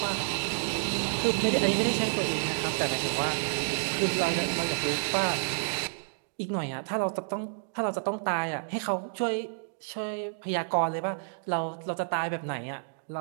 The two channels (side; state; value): left; silent; digital silence